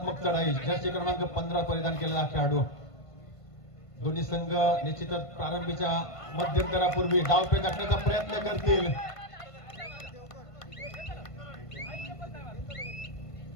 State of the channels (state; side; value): late; right; 1.5 ms